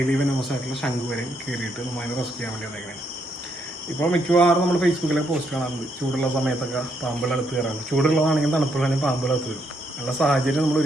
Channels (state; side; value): normal; both; correlation 0.75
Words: വെനമസ് ആയിട്ടുള്ള ശംഖുവരൻ കയറിയിട്ട് നമ്മളതിനെ റെസ്ക്യൂ ചെയ്യാൻ വേണ്ടി വന്നേക്കണേ. ഇപ്പോൾ മിക്കവാറും നമ്മൾ ഫേസ്ബുക്കിലൊക്കെ പോസ്റ്റ് കാണാറുണ്ട്. ചൂടുള്ള സമയത്തൊക്കെ പാമ്പുകളടുത്ത് കയറാറുണ്ട്. ചൂടുള്ളതാണെങ്കിൽ തണുപ്പുള്ളതിന് പാമ്പുകളടുത്ത് വരും. നല്ല സാഹചര്യം നമ്മൾ